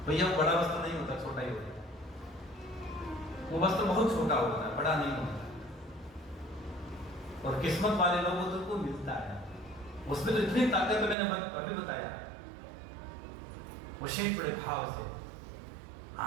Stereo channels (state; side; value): drops out; left; at 11.2 s